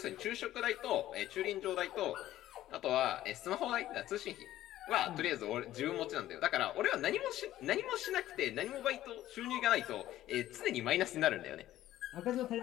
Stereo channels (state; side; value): quieter; right; 13.8 dB